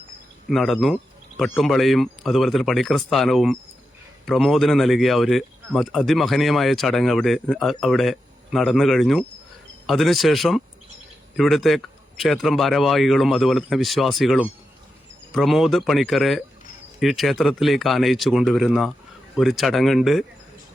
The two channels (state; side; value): normal; both; correlation 0.88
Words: നടന്നു. പട്ടുംപളയും അതുപോലെ തന്നെ പണിക്കർ സ്ഥാനവും പ്രമോദിന് നൽകിയ ഒരു അതിമഹനീയമായ ചടങ്ങ് അവിടെ നടന്നു കഴിഞ്ഞു. അതിനുശേഷം ഇവിടുത്തെ ക്ഷേത്രം ഭാരവാഹികളും അതുപോലെ തന്നെ വിശ്വാസികളും പ്രമോദ് പണിക്കരെ ഈ ക്ഷേത്രത്തിലേക്ക് ആനയിച്ചു കൊണ്ടുവരുന്ന ഒരു ചടങ്ങുണ്ട്.